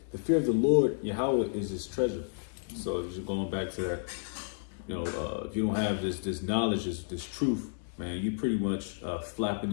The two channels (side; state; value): right; silent; digital silence